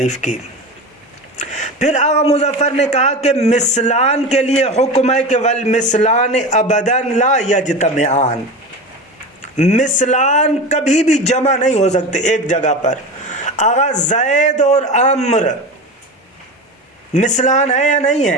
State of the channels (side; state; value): both; normal; correlation 0.27